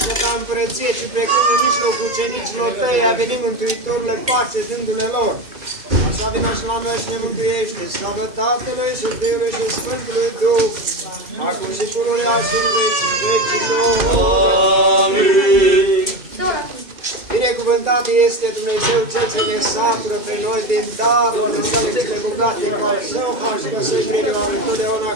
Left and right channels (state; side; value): late; left; 2.3 ms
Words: ta împărăție, ci precum în mijlocul ucenicilor tăi a venit Mântuitorule pace dându-le lor. Așa vină și la noi și ne mântuiește. Slavă Tatălui și Fiului și Sfântului Duh, acum și pururea și în vecii vecilor. Amin. Binecuvântat este Dumnezeu Cel ce ne satură pe noi din darurile sale cele bogate cu al său har și găsui grijă lui totdeauna